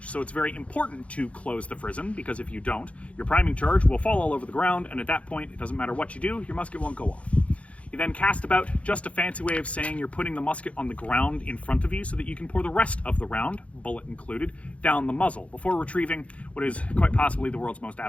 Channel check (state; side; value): late; right; 0.063 ms